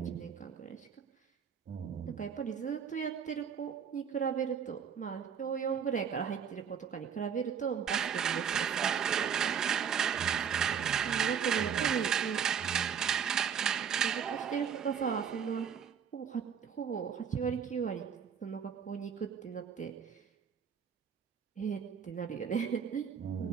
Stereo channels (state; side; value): quieter; left; 7.4 dB